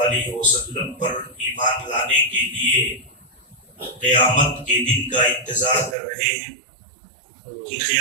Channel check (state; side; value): drops out; left; at 6.0 s